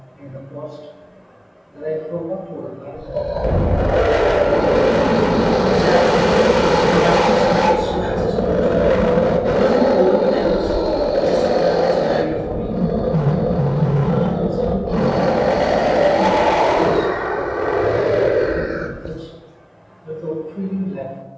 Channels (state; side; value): identical; both; correlation 1.00